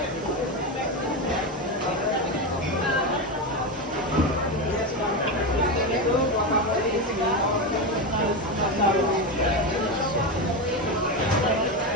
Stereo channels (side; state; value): both; normal; correlation 0.14